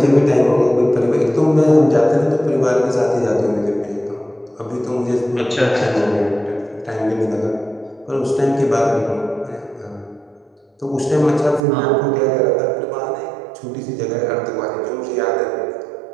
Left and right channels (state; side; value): drops out; left; at 11.6 s